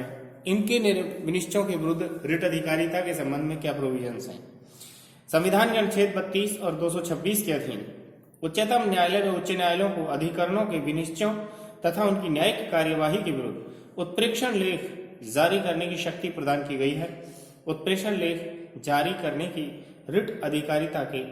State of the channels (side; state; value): both; identical; correlation 1.00